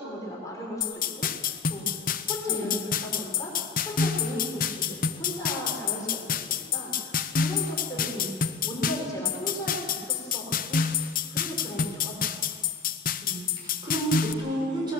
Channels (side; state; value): right; quieter; 4.7 dB